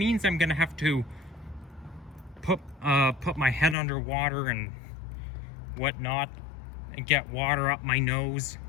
I'm gonna have to put my head underwater and whatnot and get water up my nose,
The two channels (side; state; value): right; drops out; at 3.8 s